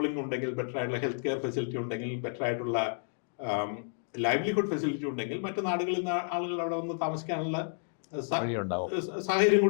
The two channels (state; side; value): silent; right; digital silence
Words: ഉണ്ടെങ്കിൽ, ബെറ്റർ ആയിട്ടുള്ള ഹെൽത്ത് കെയർ ഫെസിലിറ്റി ഉണ്ടെങ്കിൽ, ബെറ്റർ ആയിട്ടുള്ള ലൈവ്ലിഹുഡ് ഫെസിലിറ്റി ഉണ്ടെങ്കിൽ മറ്റു നാടുകളിൽ നിന്ന് ആളുകൾ അവിടെ വന്ന് താമസിക്കാനുള്ള സാഹചര്യം